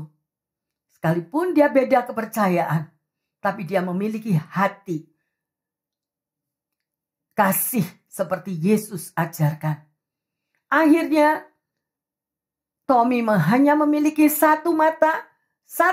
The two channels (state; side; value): identical; both; correlation 1.00